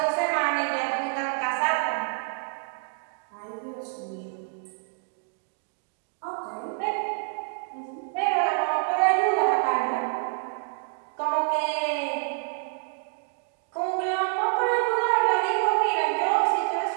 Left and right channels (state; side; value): silent; left; 59 dB below the other